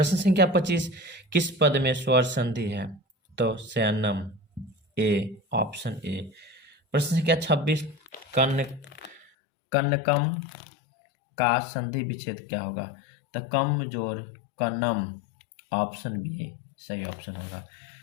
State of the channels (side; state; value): right; drops out; at 9.2 s